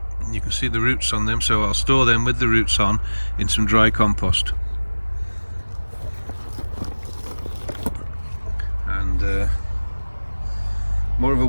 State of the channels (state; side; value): inverted; both; correlation -1.00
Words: You can see the roots on them, so I'll store them with the roots on in some dry compost. And more of a